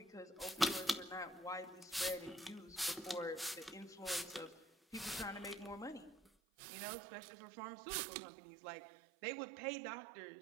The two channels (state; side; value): drops out; left; at 6.3 s